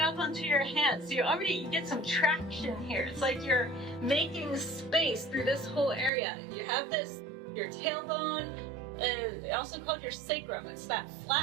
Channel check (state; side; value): drops out; left; at 6.1 s